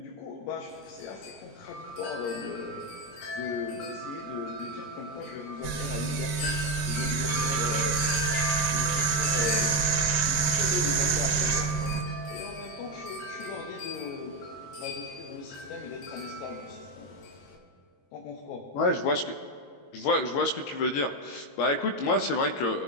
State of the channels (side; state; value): right; late; 22 ms